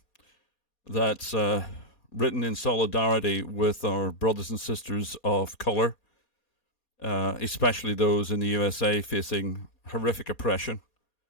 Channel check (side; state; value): right; late; 2.4 ms